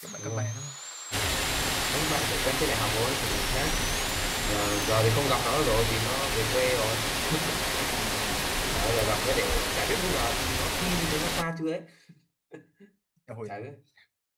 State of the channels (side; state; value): both; identical; correlation 1.00